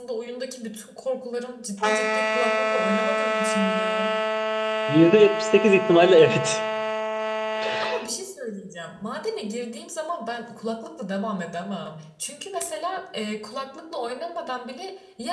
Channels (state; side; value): identical; both; correlation 1.00